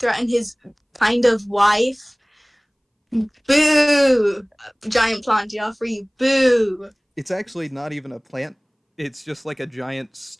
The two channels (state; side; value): identical; both; correlation 1.00